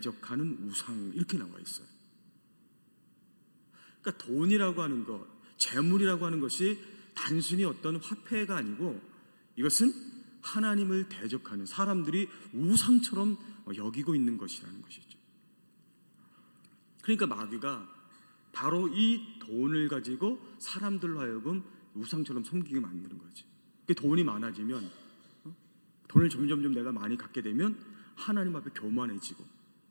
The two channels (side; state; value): both; inverted; correlation -1.00